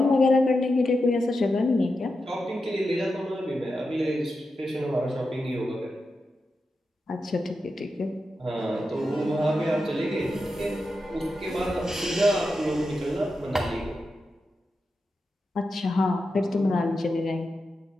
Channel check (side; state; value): both; normal; correlation 0.89